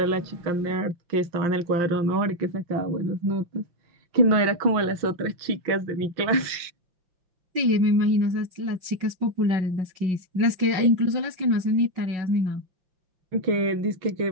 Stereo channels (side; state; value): left; late; 6.2 ms